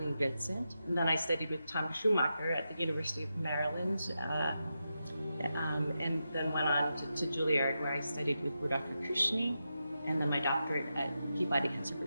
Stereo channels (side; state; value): both; inverted; correlation -0.88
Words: Vincent. And then I studied with Tom Schumacher at the University of Maryland, and then went on to Juilliard, where I studied with Rudolph Kushny, and then my doctorate at Peabody